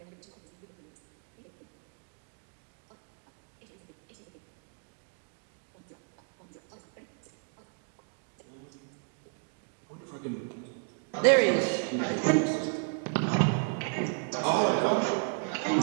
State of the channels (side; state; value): left; quieter; 38.4 dB